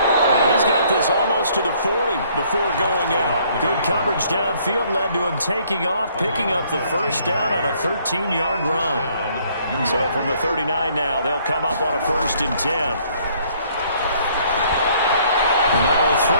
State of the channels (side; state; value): both; inverted; correlation -0.63